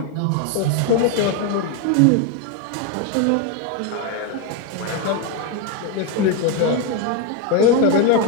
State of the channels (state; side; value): different; both; correlation 0.02